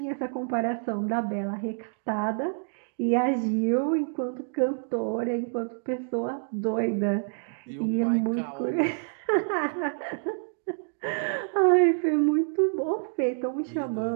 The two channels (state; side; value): silent; left; digital silence